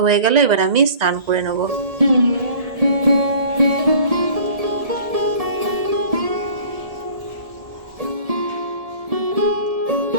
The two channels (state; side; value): late; left; 1.9 ms